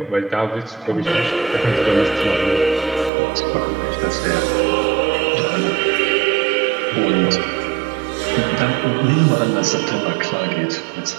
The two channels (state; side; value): drops out; left; at 3.1 s